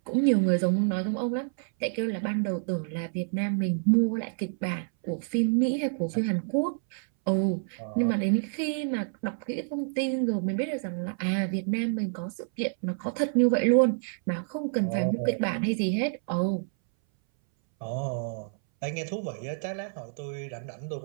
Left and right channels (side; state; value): left; silent; 59 dB below the other